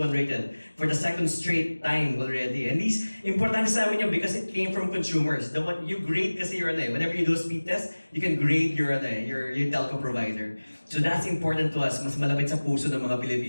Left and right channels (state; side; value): inverted; both; correlation -1.00